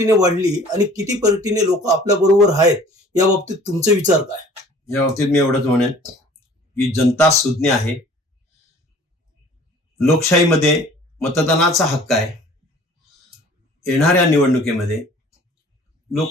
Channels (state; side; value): normal; both; correlation 0.50